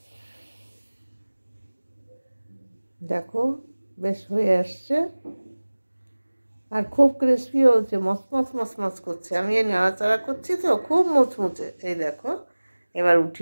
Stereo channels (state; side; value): inverted; both; correlation -1.00